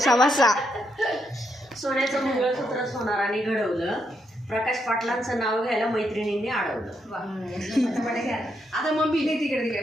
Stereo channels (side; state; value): both; normal; correlation 0.79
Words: सोन्याचं मंगळसूत्रच होणार आणि घडवलं. प्रकाश पाटलांचं नाव घ्यायला मैत्रिणींनी अडवलं. आता मम्मी तिकडे